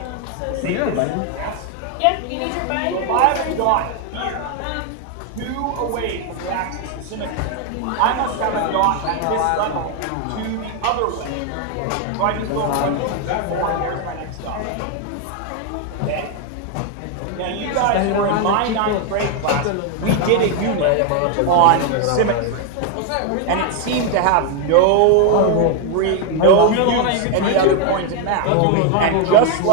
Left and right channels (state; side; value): different; both; correlation 0.01